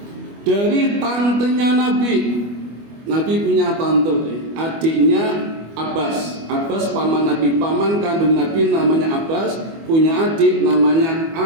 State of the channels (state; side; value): late; left; 25 ms